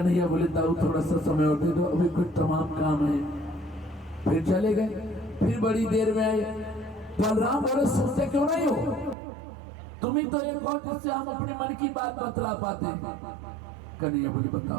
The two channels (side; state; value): left; drops out; at 9.2 s